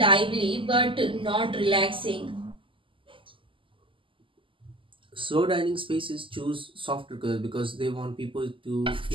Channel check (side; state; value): left; late; 0.25 ms